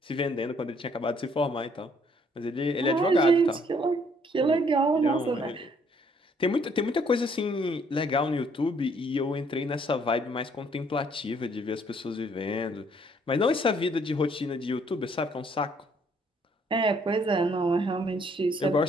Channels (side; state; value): both; normal; correlation 0.65